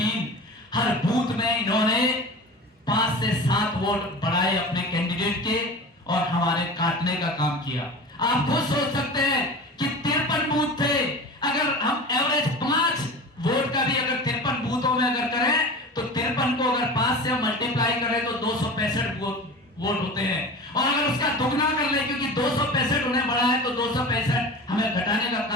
हर बूथ में इन्होंने 5 से 7 वोट बढ़ाए अपने कैंडिडेट के और हमारे काटने का काम किया। आप खुद सोच सकते हैं कि 53 बूथ थे। अगर हम एवरेज 5 वोट का भी अगर 53 बूथों में अगर करें तो 53 को अगर 5 से मल्टीप्लाई करें तो 265 वोट होते हैं। और अगर उसका दुगना कर ले, क्योंकि 265 उन्हें बढ़ा है तो 265 हमें घटाने का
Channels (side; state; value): both; normal; correlation 0.34